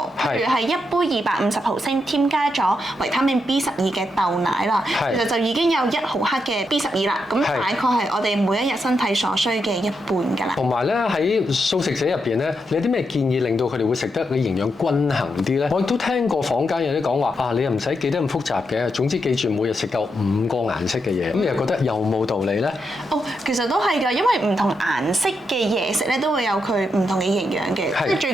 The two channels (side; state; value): both; normal; correlation 0.83